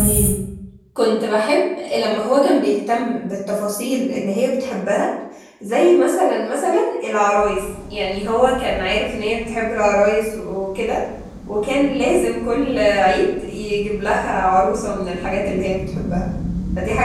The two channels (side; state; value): both; identical; correlation 1.00